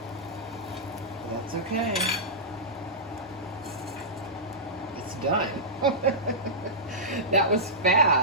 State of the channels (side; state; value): both; normal; correlation -0.15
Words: That's okay. It's done. That was